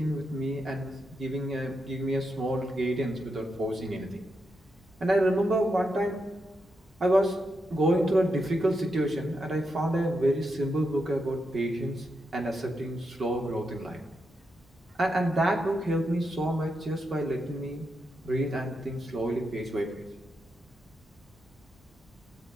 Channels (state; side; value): normal; both; correlation 0.84